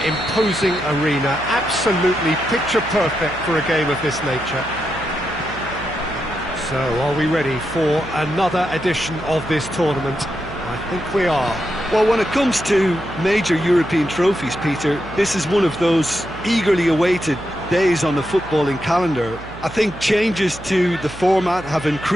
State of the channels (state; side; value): noise; right; hum, 16 dB below the sound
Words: imposing arena, absolutely picture perfect for a game of this nature. So, are we ready for another edition of this tournament? I think we are. Well, when it comes to major European trophies, Peter, this is one of those eagerly awaited days on the footballing calendar. I think changes to the format have